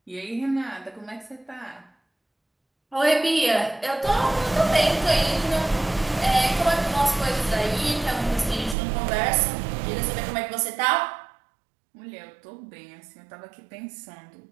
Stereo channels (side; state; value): left; drops out; at 8.8 s